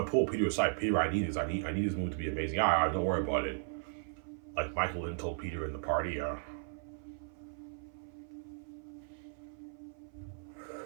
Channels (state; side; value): silent; left; 54 dB below the other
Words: pull Peter aside. Peter, I need this. I need this movie to be amazing. Yeah, don't worry about it. Like Michael Lynn told Peter in the party. Yeah.